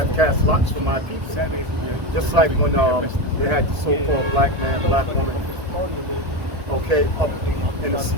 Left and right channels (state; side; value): late; left; 1.6 ms